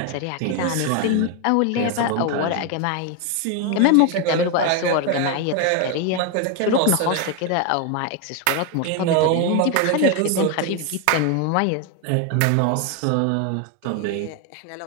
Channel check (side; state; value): both; different; correlation 0.01